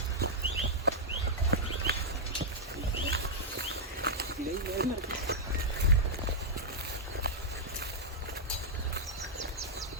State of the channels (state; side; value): normal; both; correlation -0.07